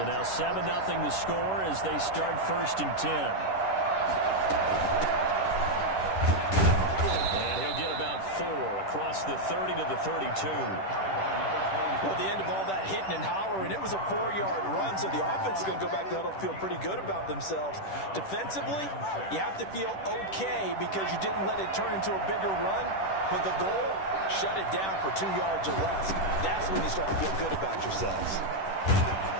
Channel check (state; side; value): late; right; 10 ms